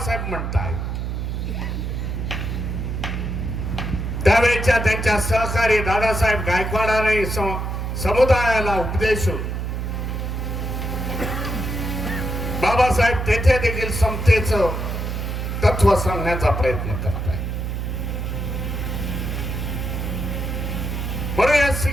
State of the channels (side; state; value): right; noise; hum, 3 dB below the sound